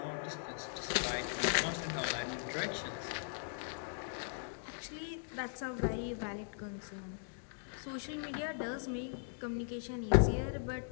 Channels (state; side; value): silent; right; digital silence